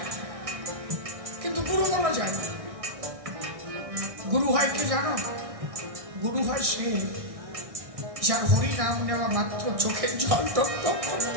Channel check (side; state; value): left; late; 1.6 ms